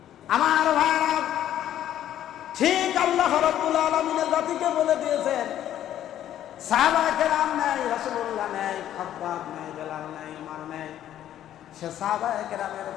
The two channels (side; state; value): right; quieter; 11.6 dB